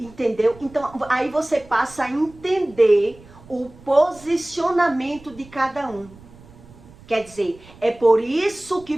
Então, aí você passa a entender o posicionamento de cada um. Quer dizer, é por isso que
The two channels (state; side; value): noise; right; rumble, 23 dB below the sound